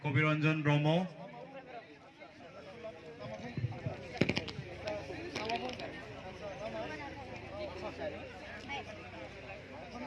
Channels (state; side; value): identical; both; correlation 1.00